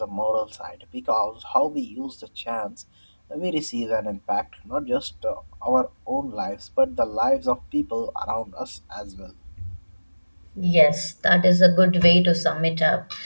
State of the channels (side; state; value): both; inverted; correlation -1.00